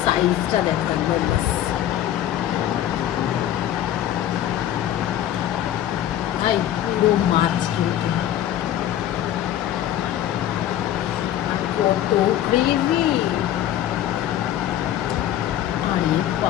সাইজটা দেখো একবার, ব্যাস ভাই পুরো মাছ কিন্তু কত গ্রেভি, আরে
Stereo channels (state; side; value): quieter; right; 11.9 dB